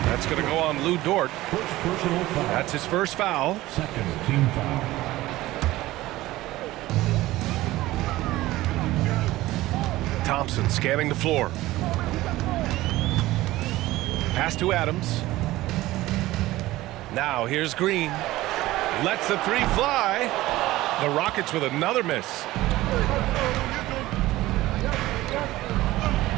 That's going to go on Lou Dort. Personal foul. That's his first foul. Second team foul. Thompson scanning the floor. Pass to Adams. Now here's Green. Lets the three fly. The Rockets with another miss.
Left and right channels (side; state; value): left; quieter; 17.2 dB